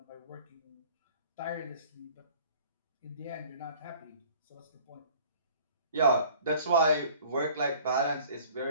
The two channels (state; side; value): inverted; both; correlation -0.50